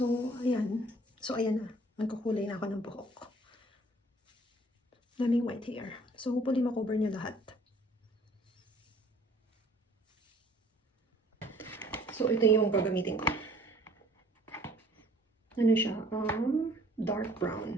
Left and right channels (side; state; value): both; normal; correlation 0.56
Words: ayan. Ayan na. Nagkukulay na ako ng buhok. Daming white hair. So hopefully makover niya lahat. So, ito yung gagamitin ko. Ano siya? Dark